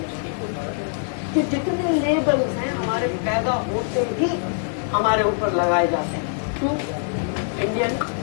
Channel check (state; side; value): silent; right; digital silence